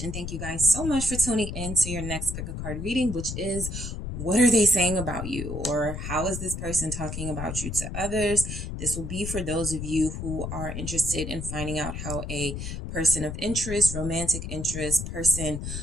and thank you guys so much for tuning in to your next pick a card reading, which is what are they saying about you, or how is this person talking about you to others? This will be for those of you who are interested in finding out how a person of interest, romantic interest, person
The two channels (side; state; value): left; noise; rumble, 6 dB below the sound